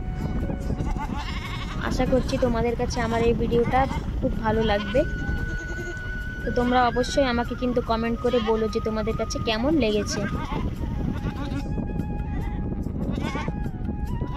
আশা করছি তোমাদের কাছে আমার এই ভিডিওটা খুব ভালো লাগবে। তো তোমরা অবশ্যই আমাকে কিন্তু কমেন্ট করে বলো যে তোমাদের কাছে কেমন লেগেছে।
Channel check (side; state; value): both; identical; correlation 1.00